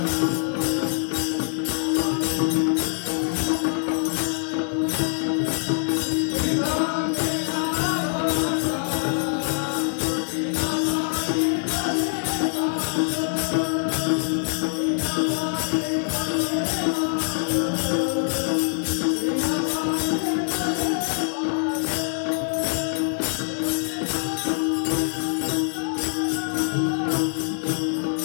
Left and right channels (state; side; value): silent; right; digital silence